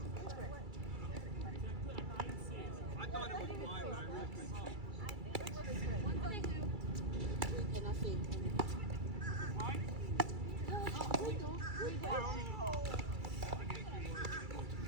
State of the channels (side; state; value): left; late; 2.3 ms